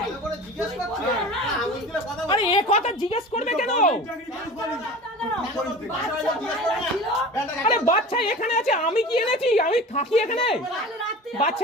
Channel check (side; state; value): both; normal; correlation 0.37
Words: ভালো করে জিজ্ঞেস করছি আঙুল তুলে কথা বল। আরে এ কথা জিজ্ঞেস করবে কেন? আরে বাচ্চা এখানে আছে, আমি কি এনেছি? আমি থাকি এখানে,